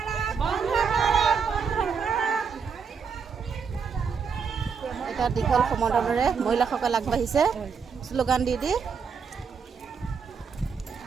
বন্ধ কৰক, বন্ধ কৰক। এটা দীঘল সমদলেৰে মহিলাসকল আগবাঢ়িছে শ্লোগান দি দি।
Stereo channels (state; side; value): quieter; left; 6.0 dB